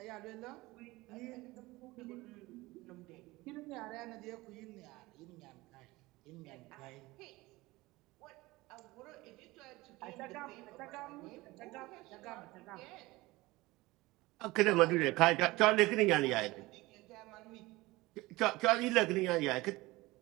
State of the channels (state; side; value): quieter; left; 20.5 dB